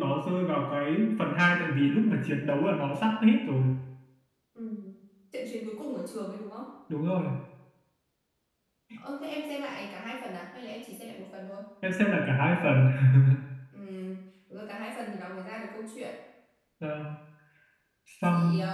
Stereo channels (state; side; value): identical; both; correlation 1.00